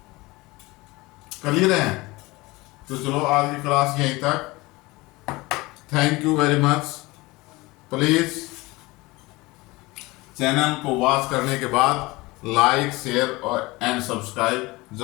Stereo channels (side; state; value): right; quieter; 22.1 dB